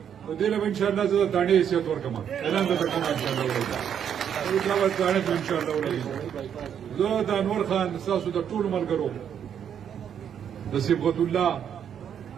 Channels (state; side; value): quieter; left; 8.7 dB